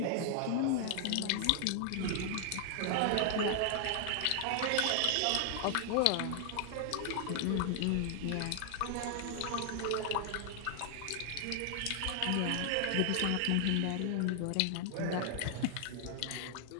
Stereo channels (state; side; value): different; both; correlation 0.00